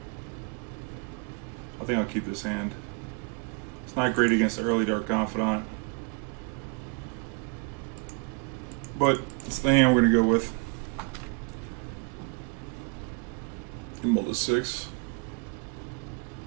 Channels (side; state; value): left; quieter; 32.0 dB